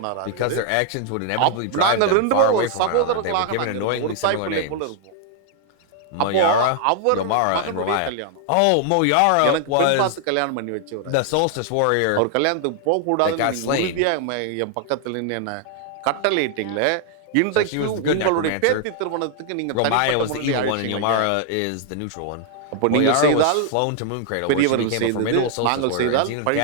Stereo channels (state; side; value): different; both; correlation 0.00